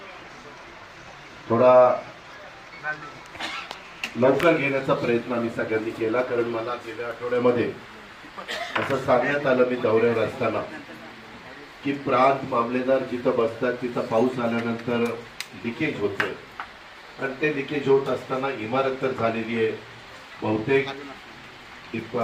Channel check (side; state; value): both; identical; correlation 1.00